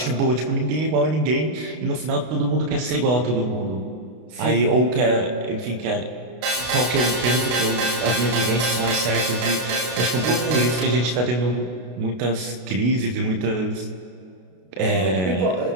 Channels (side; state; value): left; late; 32 ms